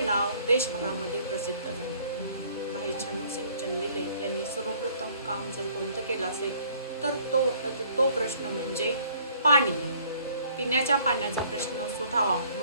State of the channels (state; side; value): inverted; both; correlation -0.58